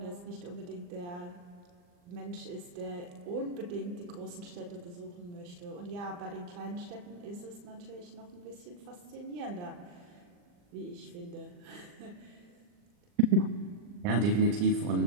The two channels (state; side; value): late; left; 40 ms